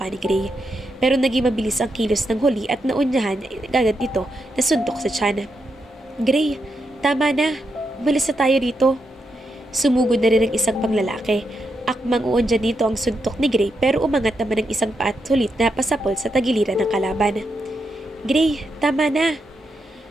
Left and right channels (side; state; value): both; normal; correlation 0.83